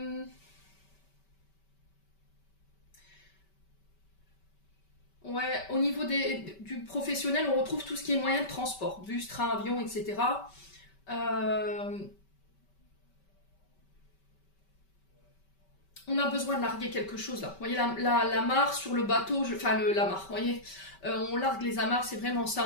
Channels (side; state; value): right; late; 5.2 ms